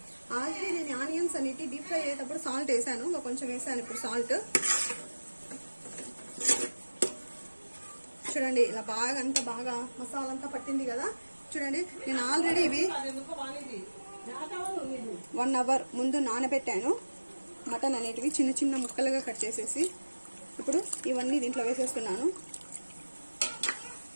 ఆల్రెడీ నేను ఆనియన్స్ అనేవి డీప్ ఫ్రై అయ్యేటప్పుడు సాల్ట్ వేసాను. కొంచెం వేసాను ఇప్పుడు సాల్ట్. చూడండి ఇలా బాగా అంతా బాగా మసాలా అంతా పట్టింది కదా. చూడండి నేను ఆల్రెడీ ఇవి 1 అవర్ ముందు నానబెట్టాను. మటన్ అనేటివి చిన్న చిన్న ముక్కలుగా కట్ చేసేసి ఇప్పుడు ఇవన్నీ దీంట్లో వేసేస్తున్నాను.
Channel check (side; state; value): both; inverted; correlation -1.00